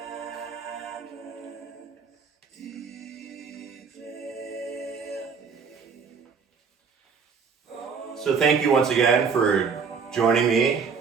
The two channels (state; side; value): quieter; left; 5.7 dB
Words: So thank you once again for joining me,